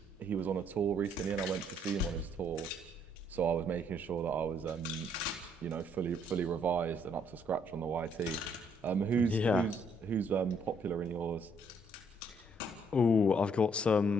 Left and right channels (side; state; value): both; normal; correlation 0.68